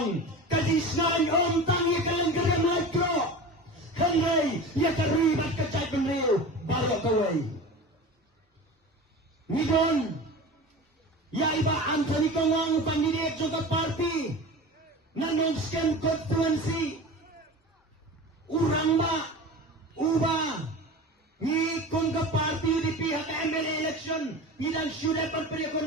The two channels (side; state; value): both; normal; correlation 0.33